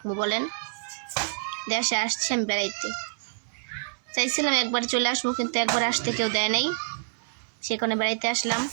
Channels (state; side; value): silent; left; digital silence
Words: বলেন? দেশে আসছি আমি বেড়াইতে, চাইছিলাম একবার চলে আসবো, কিন্তু একবার আসতে কেউ দেয় নাই, সেখানে বেড়াইতে আসলাম।